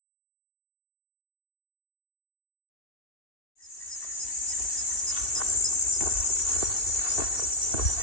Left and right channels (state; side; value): late; right; 2.7 ms